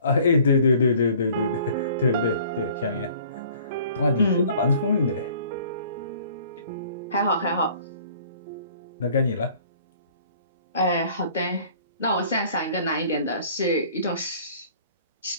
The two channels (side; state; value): both; inverted; correlation -0.53